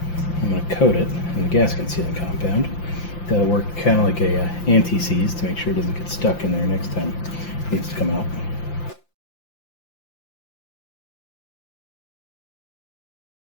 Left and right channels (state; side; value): late; right; 5.8 ms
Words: I'm going to coat it in the gasket sealing compound. That'll work kind of like a anti-seize to make sure it doesn't get stuck in there next time it needs to come out.